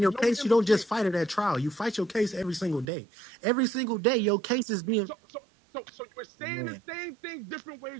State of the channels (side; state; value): left; drops out; at 2.9 s